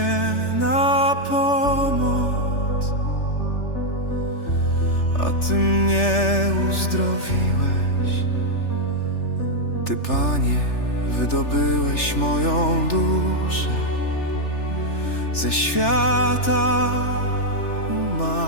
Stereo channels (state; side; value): late; right; 3.4 ms